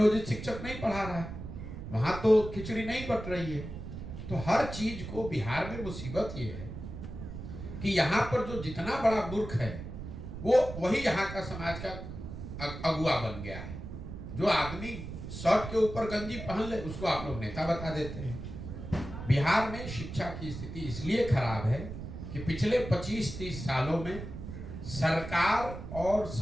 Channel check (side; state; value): right; noise; rumble, 9 dB below the sound